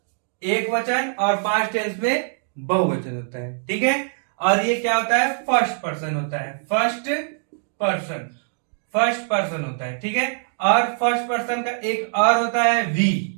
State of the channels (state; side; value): silent; left; digital silence